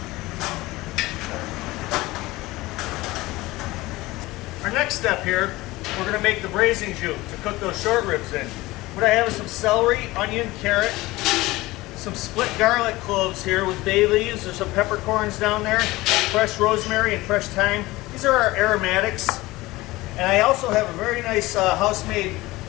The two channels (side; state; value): right; quieter; 19.6 dB